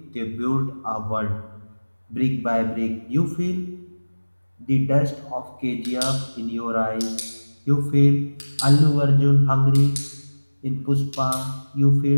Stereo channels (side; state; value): both; inverted; correlation -1.00